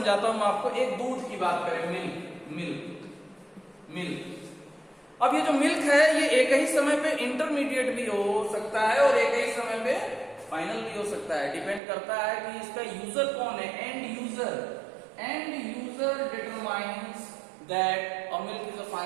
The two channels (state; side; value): drops out; left; at 11.8 s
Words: हूं आपको। एक दूध की बात करें, मिल्क। अब ये जो मिल्क है ये एक ही समय पे इंटरमीडिएट भी हो सकता है और एक ही समय पे फाइनल भी हो सकता है। डिपेंड करता है कि इसका यूजर कौन है, and user determines that a milk is a